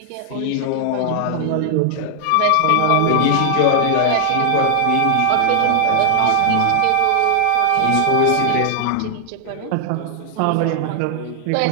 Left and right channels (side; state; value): both; different; correlation 0.00